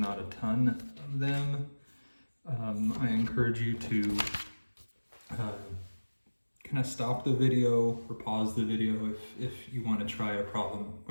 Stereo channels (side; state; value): both; inverted; correlation -1.00